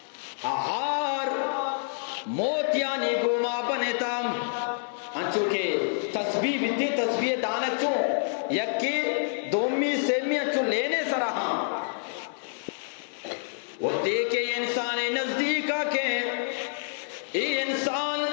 آہار موتیانی گوما بنتا انچو کہ تسبیح بیتی تسبیح دانت چون یکی دومی سیمی انچو لینے سرہاں وہ دیکھے انسان نزدیکا کہ ای انسان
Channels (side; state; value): right; silent; 60 dB below the other